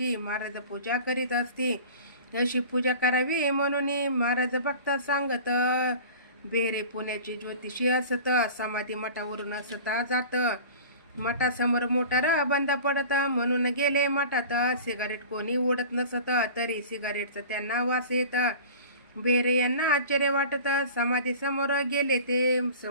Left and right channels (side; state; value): both; inverted; correlation -0.40